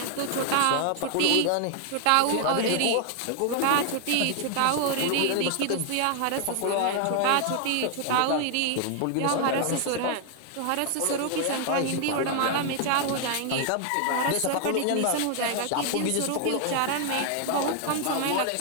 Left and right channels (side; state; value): both; different; correlation 0.00